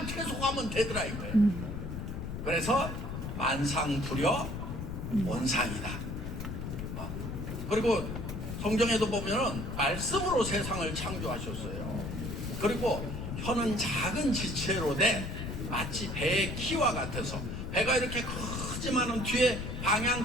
계속하면 되더라 이거예요. 그래서 만상불효 온상이다. 그리고 성경에도 보면은 말씀으로 세상을 창조하셨어요. 그리고 혀는 작은 지체로 돼 마치 배의 키와 같아서, 배가 이렇게 크지만은 뒤에 방향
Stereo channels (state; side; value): noise; left; rumble, 5 dB below the sound